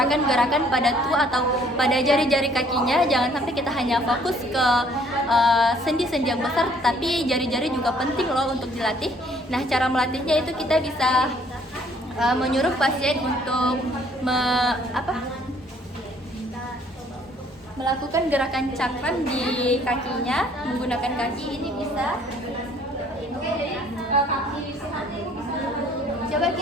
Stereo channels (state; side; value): normal; both; correlation 0.61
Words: pada atau pada jari-jari kakinya, jangan sampai kita hanya fokus ke sendi-sendi yang besar, tapi jari-jari juga penting loh untuk dilatih. Nah, cara melatihnya itu kita bisa menyuruh pasien untuk melakukan gerakan cakram di kakinya menggunakan kaki. Ini bisa. Oke, jadi coba